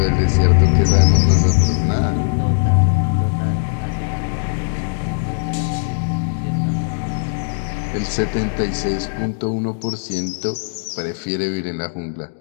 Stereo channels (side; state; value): right; silent; digital silence